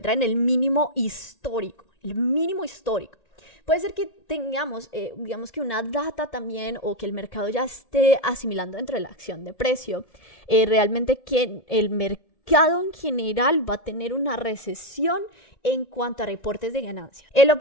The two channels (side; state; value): right; late; 1.7 ms